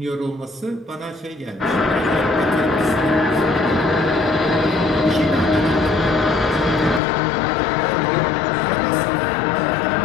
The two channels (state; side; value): drops out; right; at 7.0 s